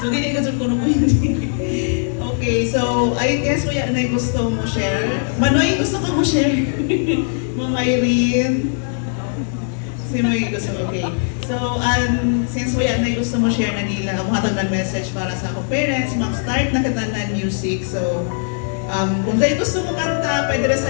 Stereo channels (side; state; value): right; silent; digital silence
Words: So dili ka ko nung hindi. Okay, so I guess kuya na gusto mo share. Manoy, gusto ka mo share? Ma'am Irene. Sino yung gusto? Okay. So, since kuya na gusto mo share na nila, ang hatag ng message para sa akong parents, mag-start na kita ng music. So, kung dahil gusto mo kanta, pwede rin